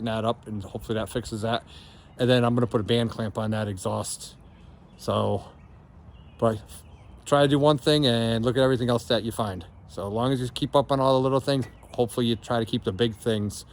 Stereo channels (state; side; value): identical; both; correlation 1.00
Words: that up and hopefully that fixes that. And then I'm going to put a band clamp on that exhaust. So, but try to do one thing and look at everything else that you find. So as long as you keep up on all the little things, hopefully you try to keep the big things